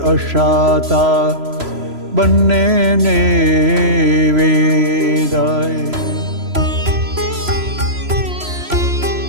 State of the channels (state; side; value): late; left; 3.0 ms